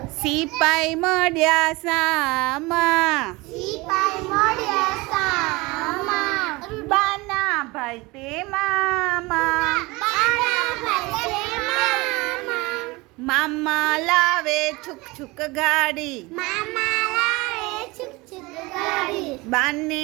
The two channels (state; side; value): quieter; left; 23.4 dB